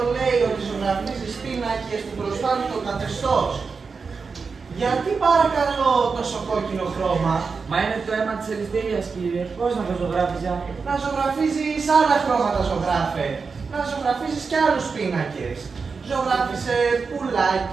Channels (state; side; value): quieter; left; 5.0 dB